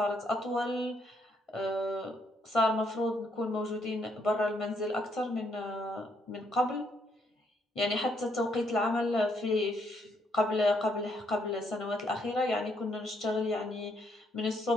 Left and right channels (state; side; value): normal; both; correlation 0.73